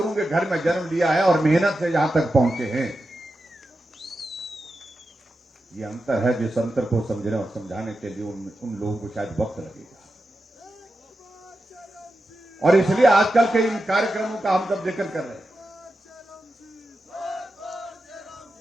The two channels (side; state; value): both; normal; correlation 0.90